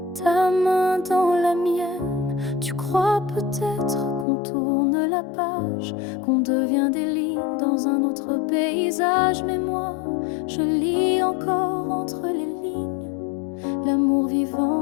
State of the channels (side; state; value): right; drops out; at 4.2 s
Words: ta main dans la mienne. Tu crois peut-être qu'on tourne la page, qu'on devient des lignes dans un autre paysage. Mais moi, je lis encore entre les lignes l'amour